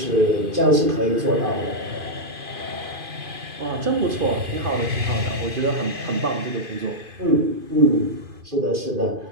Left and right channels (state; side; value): late; left; 2.5 ms